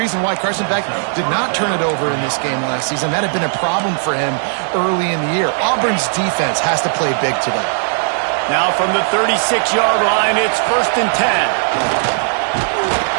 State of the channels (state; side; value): silent; left; digital silence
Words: why Carson Beck did not turn it over in this game last season. That had been a problem for him early in the year. Auburn's defense has to play big today. Now from the 36-yard line, it's 1st and 10.